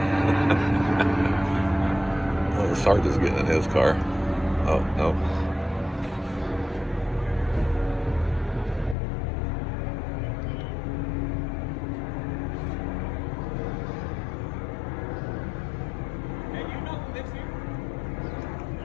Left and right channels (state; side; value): drops out; right; at 9.0 s